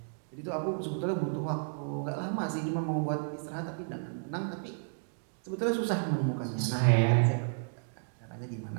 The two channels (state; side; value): silent; left; digital silence